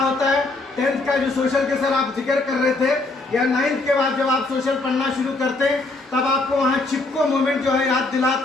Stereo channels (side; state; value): right; quieter; 3.1 dB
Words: है? 10th का जो सोशल के सर आप जिक्र कर रहे थे, या 9th के बाद जब आप सोशल पढ़ना शुरू करते हैं तब आपको वहाँ चिपको मूवमेंट जो है याद